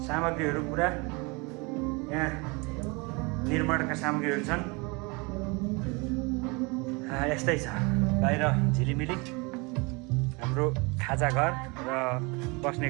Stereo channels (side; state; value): left; quieter; 28.1 dB